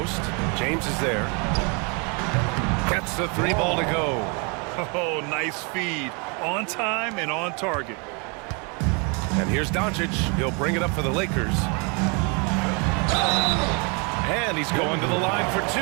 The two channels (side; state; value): left; quieter; 33.1 dB